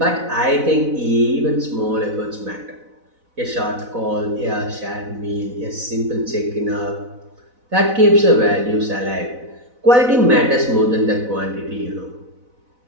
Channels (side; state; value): left; late; 4.0 ms